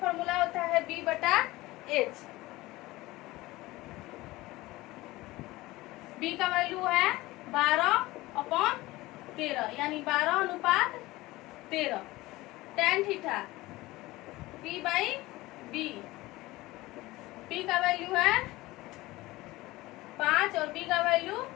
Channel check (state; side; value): quieter; right; 19.3 dB